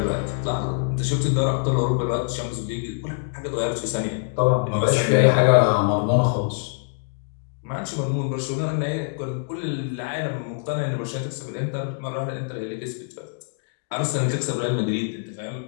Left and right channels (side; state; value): right; silent; digital silence